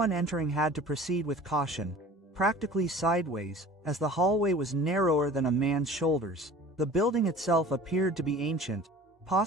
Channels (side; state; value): both; normal; correlation 0.43